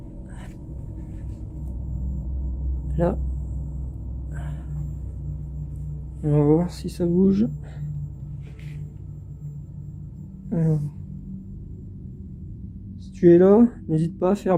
Là. On va voir si ça bouge. Alors, si tu es là, n'hésite pas à faire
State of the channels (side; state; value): both; identical; correlation 1.00